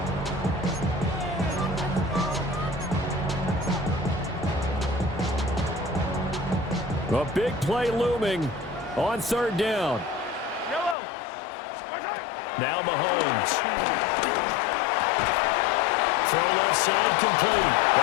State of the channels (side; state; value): right; drops out; at 11.0 s